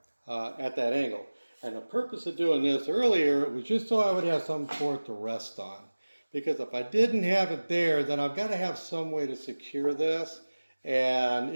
at that angle. And the purpose of doing this earlier was just so I would have some for it to rest on. Because if I didn't have it there, then I've got to have some way to secure this. And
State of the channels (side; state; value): both; inverted; correlation -1.00